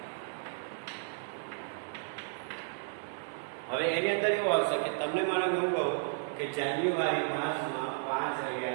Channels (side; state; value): left; silent; 56 dB below the other